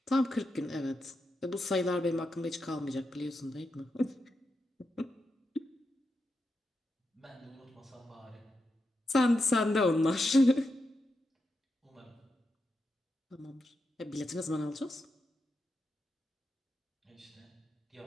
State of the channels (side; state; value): both; normal; correlation 0.86